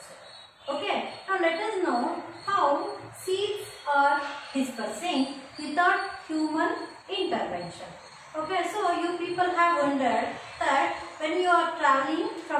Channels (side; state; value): both; identical; correlation 1.00